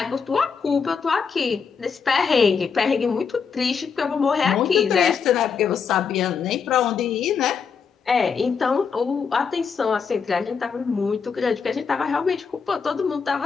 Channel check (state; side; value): quieter; right; 6.0 dB